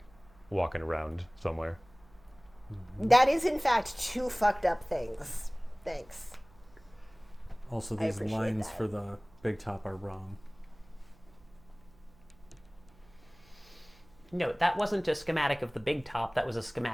walking around somewhere. That is in fact 2 fucked up things. Thanks. Also, I these appreciate lines that. for the big top are wrong. No, that wasn't a schematic of the big top, that was a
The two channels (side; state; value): right; noise; hum, 27 dB below the sound